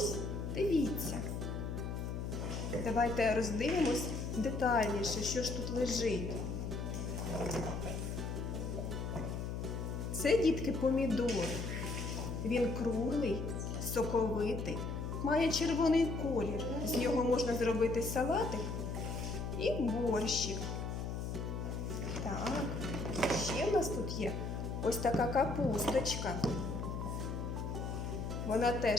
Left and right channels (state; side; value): noise; left; hum, 3 dB below the sound